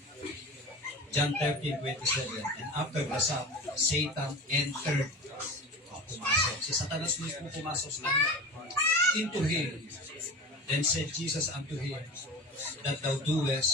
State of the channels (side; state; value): both; normal; correlation 0.32